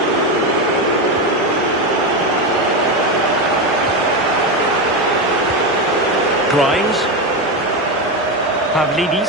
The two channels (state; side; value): normal; both; correlation 0.13